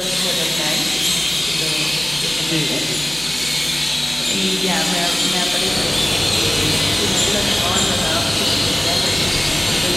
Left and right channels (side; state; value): left; noise; hum, 22 dB below the sound